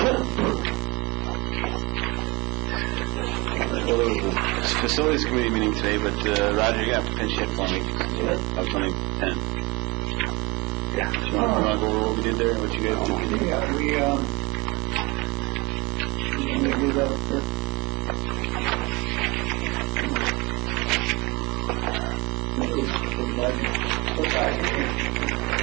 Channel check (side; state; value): left; quieter; 25.2 dB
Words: Well, there was a facilities committee meeting today, but Roger, you have to finish it for me. Upcoming 10. Yeah. Do you want to go over what we did there? What you guys did? Yeah, we do that first. Okay.